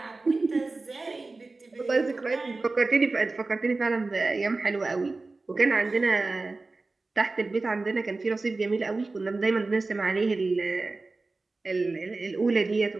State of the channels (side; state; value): left; quieter; 3.5 dB